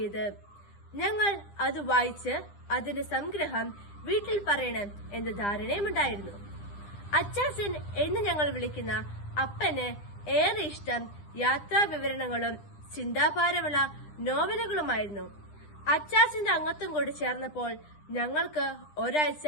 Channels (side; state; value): right; late; 9.9 ms